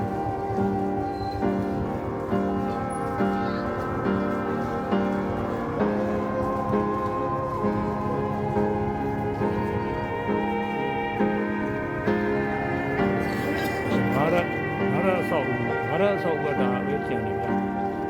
ငါရဆောက်ဝတ်တာပဲကျန်နေဗျာ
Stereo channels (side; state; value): both; identical; correlation 1.00